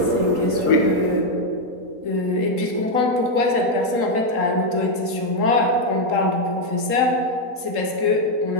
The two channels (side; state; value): left; late; 3.8 ms